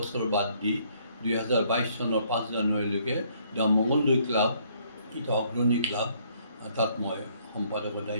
বাদ দি 2022 চনৰ 5 জানুৱাৰীলৈকে দ্য মংগলদৈ ক্লাব এটা অগ্ৰণী ক্লাব তাত মই সম্পাদকৰ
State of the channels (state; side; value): inverted; both; correlation -0.66